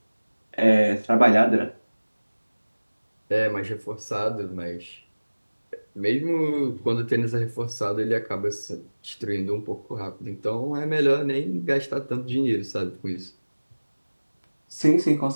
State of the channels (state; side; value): inverted; both; correlation -1.00